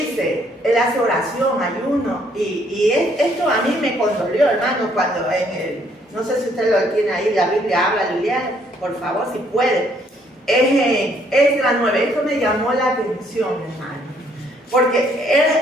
él hace oración, ayuno, y esto a mí me condolió, hermano, cuando no sé si usted lo tiene ahí, la Biblia habla, Liliana, por favor, si puede, es Esdras 9, esto me llamó la atención, hermano, porque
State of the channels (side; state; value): both; normal; correlation 0.67